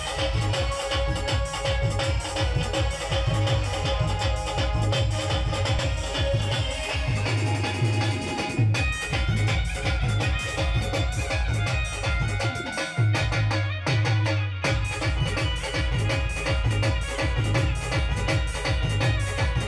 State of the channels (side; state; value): both; identical; correlation 1.00